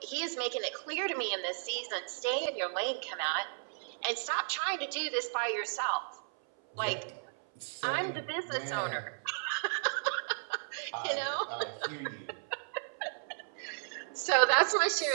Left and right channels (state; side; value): silent; left; 55 dB below the other